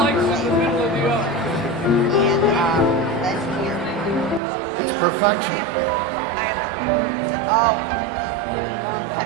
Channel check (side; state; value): left; drops out; at 4.4 s